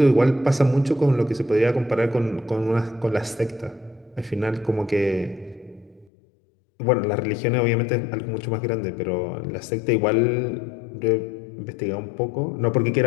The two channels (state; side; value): drops out; right; at 6.1 s